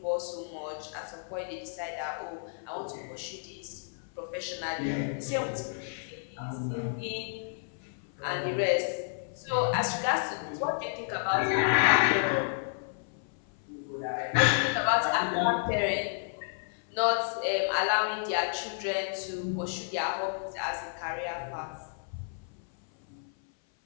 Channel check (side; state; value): right; silent; 56 dB below the other